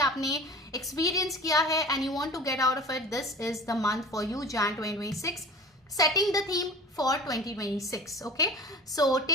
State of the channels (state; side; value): normal; both; correlation 0.39